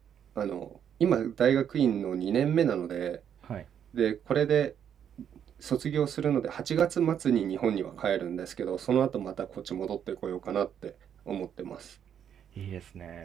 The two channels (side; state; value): left; quieter; 8.8 dB